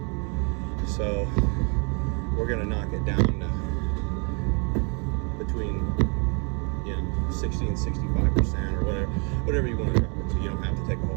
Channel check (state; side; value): quieter; left; 35.0 dB